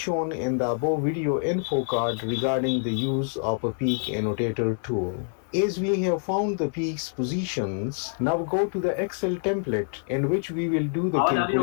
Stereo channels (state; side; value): silent; right; digital silence